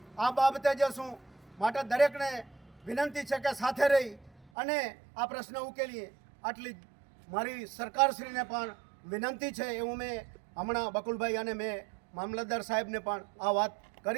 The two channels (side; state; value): left; drops out; at 4.5 s